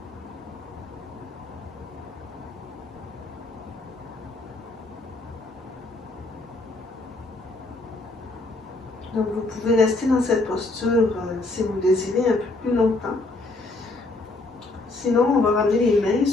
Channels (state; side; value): quieter; right; 3.1 dB